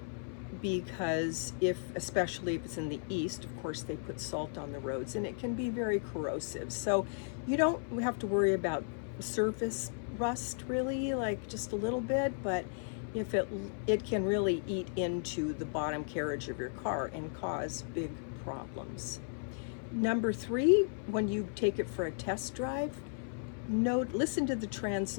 because especially if it's in the east, of course, they put salt on the roads and it can be very corrosive. So you don't have to worry about surface rust really, like just a little bit, but if it can really eat into the bottom carriage of your car and cause big problems. Number 3, when you take it for a test drive, listen to the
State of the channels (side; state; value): right; silent; 54 dB below the other